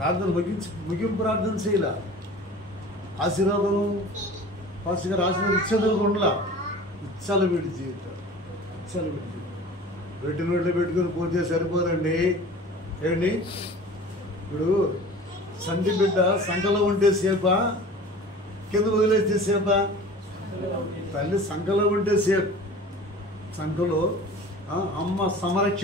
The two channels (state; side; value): normal; both; correlation 0.41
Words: ముగింపు ప్రార్థన చేయాల. ఆశీర్వాదం ఫస్ట్ గారు ఆశీర్వాదం ఇచ్చేదనుకుండా ఇచ్చలవిడి జీవితం, ఇచ్చలవిడి జీవితం. పెట్టి నోట్లో పెట్టుకుని పోతే సరిపోదండి. ఏంటి ఇప్పుడు సంటి బిడ్డ సంకలో ఉంటే సేపా, కింద వదిలేస్తే సేపా? తల్లి సంకలో ఉంటే సేఫ్. సంకలో అమ్మ